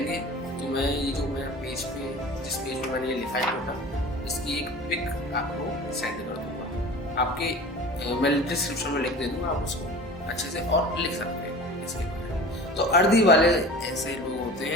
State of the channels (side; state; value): both; normal; correlation 0.39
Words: तो मैं ये जो मैं पेज पे, जिस पेज में मैंने ये लिखा है टोटल, इसकी एक पिक आपको सेंड कर दूंगा, आपके मैं डिस्क्रिप्शन में लिख दे दूंगा, आप उसको अच्छे से और लिख सकते हैं इसके बारे में। तो अर्धी वाले ऐसे लोग होते